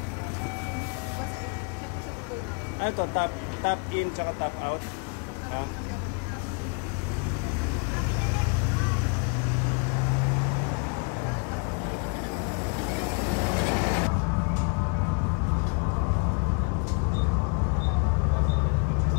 Ano to? Top in tsaka top out?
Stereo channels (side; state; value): right; quieter; 35.9 dB